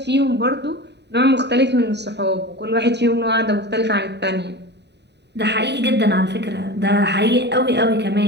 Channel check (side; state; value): left; late; 0.50 ms